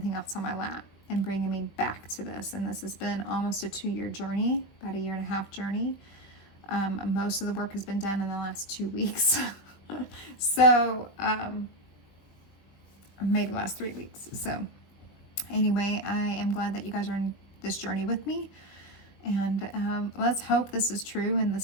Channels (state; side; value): late; right; 20 ms